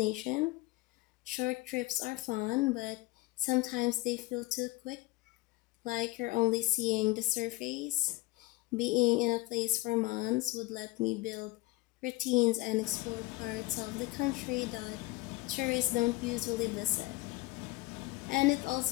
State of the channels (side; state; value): right; quieter; 20.3 dB